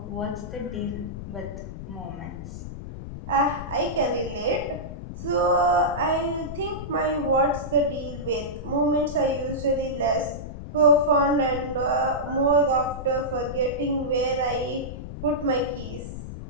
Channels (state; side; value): noise; left; rumble, 9 dB below the sound